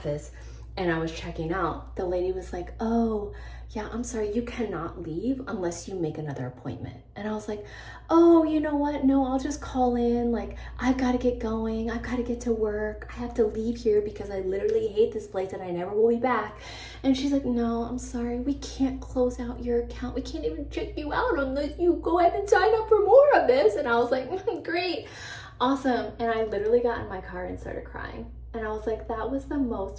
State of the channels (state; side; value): identical; both; correlation 1.00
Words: and I was checking out, the lady was like, oh, yeah, I'm sorry, you cannot leave unless you make another appointment. And I was like, oh, you know what? No, I'll just call in. Like, I've got to get going. I've got to get to work. I have to leave here because I literally hate this place and I never will be back. And she's like, no, I'm sorry. We can't close out your account. We can't even check you out unless you go ahead and sign up for more of this. And I was like, great, awesome. And I literally got in my car and started crying. And I was like, that was the